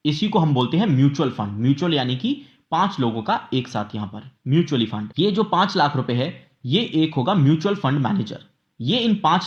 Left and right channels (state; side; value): identical; both; correlation 1.00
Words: इसी को हम बोलते हैं म्यूचुअल फंड। म्यूचुअल यानी कि 5 लोगों का एक साथ यहां पर म्यूचुअली फंड। ये जो 5 लाख रुपए है ये एक होगा म्यूचुअल फंड मैनेजर। ये इन